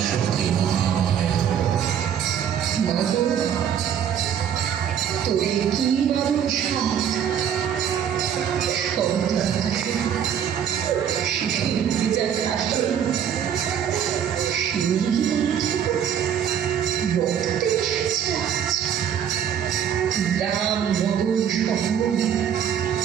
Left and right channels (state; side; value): quieter; left; 8.9 dB